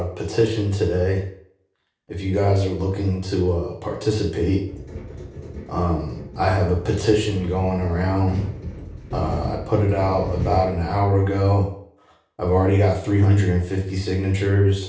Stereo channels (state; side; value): identical; both; correlation 1.00